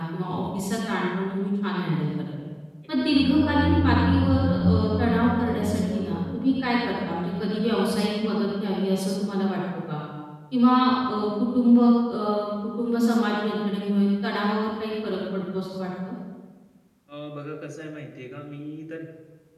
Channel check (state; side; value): identical; both; correlation 1.00